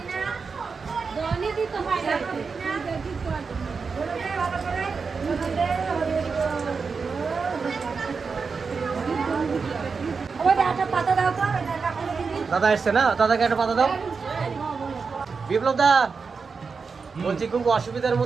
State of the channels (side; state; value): left; quieter; 5.1 dB